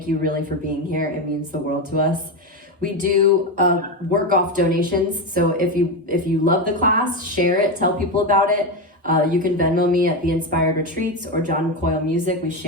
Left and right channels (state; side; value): normal; both; correlation 0.13